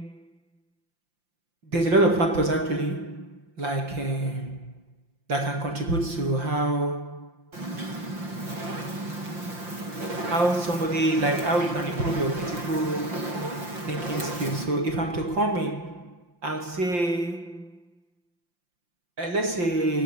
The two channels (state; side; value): late; left; 5.8 ms